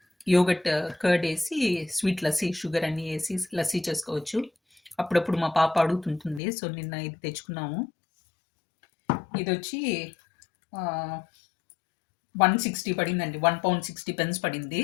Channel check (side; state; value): right; drops out; at 6.4 s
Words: యోగట్ కర్డ్ వేసి స్వీట్ లస్సీ, షుగర్ అన్నీ వేసి లస్సీ చేసుకోవచ్చు. అప్పుడప్పుడు మా పాప అడుగుతుంటుంది. సో నిన్న ఇది తెచ్చుకున్నాము. ఇది వచ్చి 160 పడిందండి. 1 pound 60 pence పడింది.